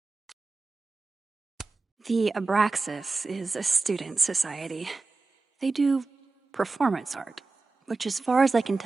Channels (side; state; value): left; quieter; 3.8 dB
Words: The Abraxas is a student society. They do performance art, which, as far as I can